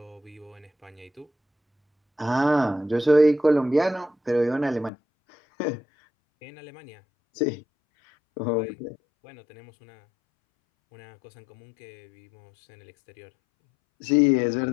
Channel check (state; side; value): drops out; right; at 4.9 s